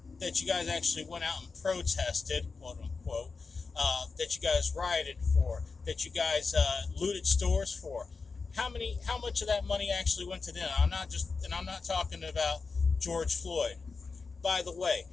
that you guys actually went out and protested, quote unquote, that you guys rioted for, that you guys looted stores for. How much of that money actually went to them? I'm not talking about George Floyd. By the way,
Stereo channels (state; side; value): quieter; right; 4.5 dB